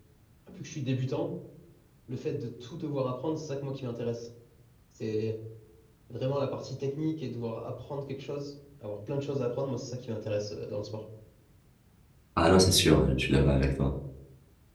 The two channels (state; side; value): identical; both; correlation 1.00